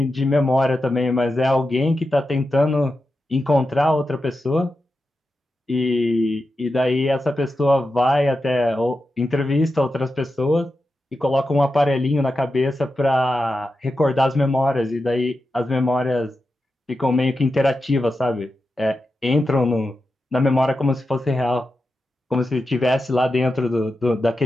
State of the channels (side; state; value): both; normal; correlation 0.90